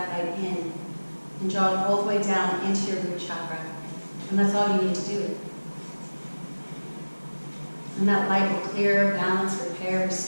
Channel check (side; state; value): both; inverted; correlation -1.00